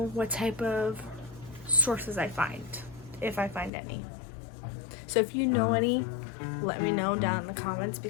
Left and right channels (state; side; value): drops out; right; at 3.7 s